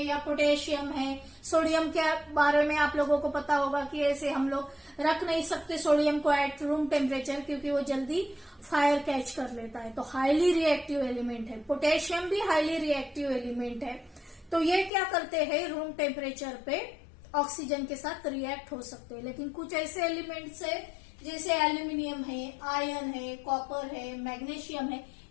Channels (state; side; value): drops out; right; at 14.9 s